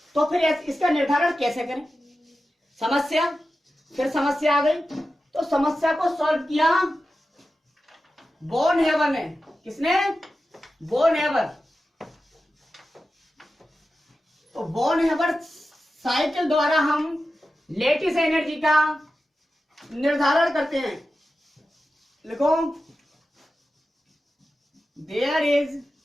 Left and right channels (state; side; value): normal; both; correlation 0.92